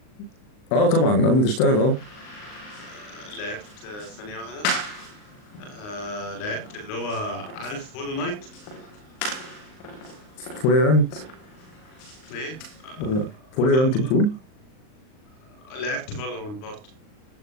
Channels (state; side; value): late; right; 38 ms